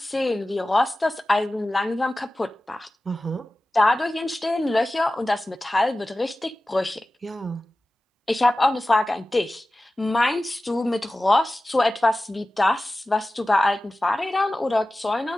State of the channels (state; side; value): normal; both; correlation 0.96